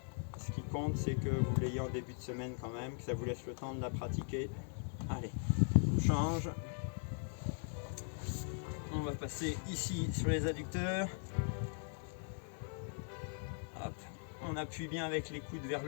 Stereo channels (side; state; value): right; silent; 51 dB below the other